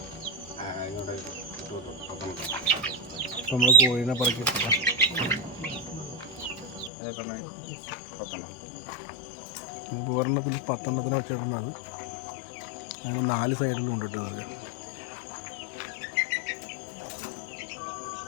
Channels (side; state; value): right; drops out; at 6.9 s